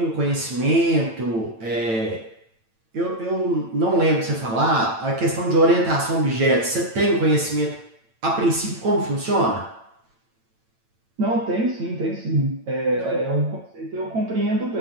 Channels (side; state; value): left; late; 8.9 ms